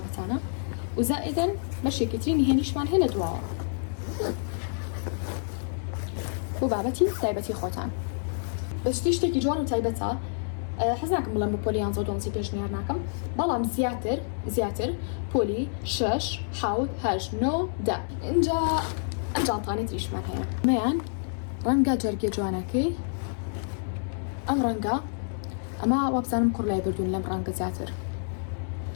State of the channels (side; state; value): right; silent; digital silence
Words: و زائیدەن بەشێکی تری نهێنیشمان هەیە لە دواوە بۆ بابەتی تایبەتی خۆتان بەشتی شتێکی جوان و تایبەتە حەز ناکەم بڵێم بۆ پۆلی 11 پێشنیار ناکەم بەڵام زیاتر پۆلی 6 7 8 9 10 اینجا ئەم جانتانەی تریشمان هەیە مەیان ڕەنگە جەرگێ جوانەکەی ئەم ڕەنگە ئەمە وابزانم کوڕ لای بردوون لەم ڕەنگە زیاتر